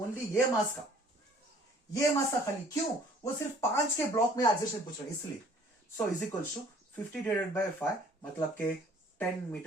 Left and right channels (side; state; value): both; normal; correlation 0.55